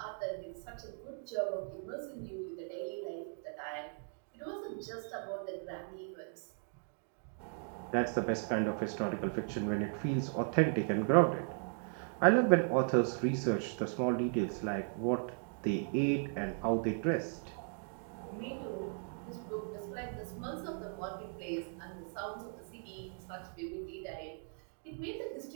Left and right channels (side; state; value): left; silent; 53 dB below the other